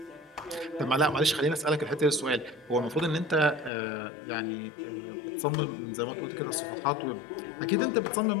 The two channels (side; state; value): right; drops out; at 3.7 s